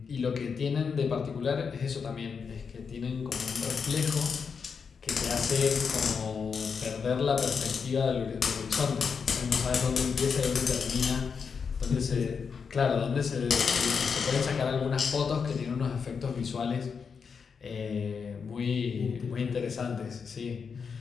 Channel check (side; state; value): right; quieter; 5.9 dB